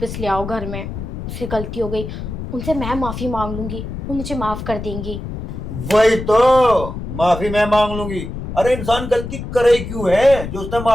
ले आओ घर में। उससे गलती हो गई, उनसे मैं माफ़ी मांग लूंगी, वो मुझे माफ़ कर देंगी। वही तो, माफी मैं मांग लूंगी। अरे इंसान गलती करे ही क्यों है जो उसने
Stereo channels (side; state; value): left; noise; rumble, 7 dB below the sound